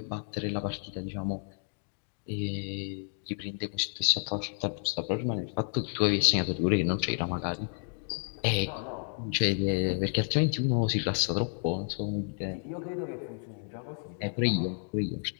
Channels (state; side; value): silent; right; 57 dB below the other